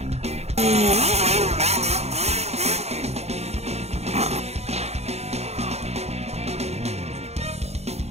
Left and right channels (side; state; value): left; late; 0.31 ms